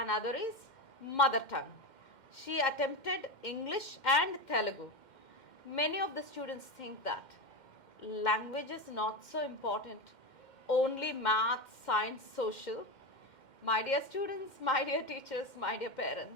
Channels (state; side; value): late; right; 2.1 ms